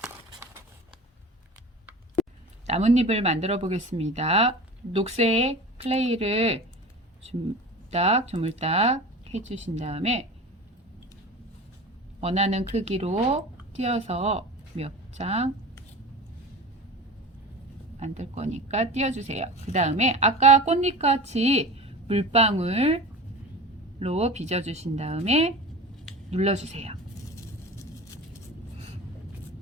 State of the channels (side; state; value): both; normal; correlation 0.34